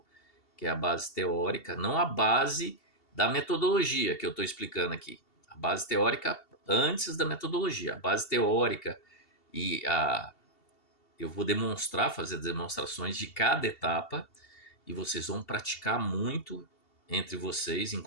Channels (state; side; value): late; right; 2.7 ms